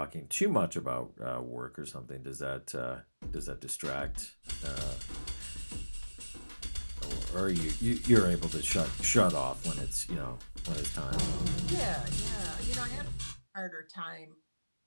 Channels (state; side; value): inverted; both; correlation -1.00